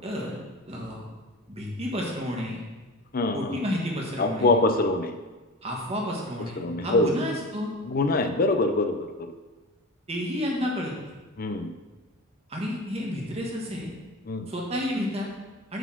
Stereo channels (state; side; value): normal; both; correlation 0.30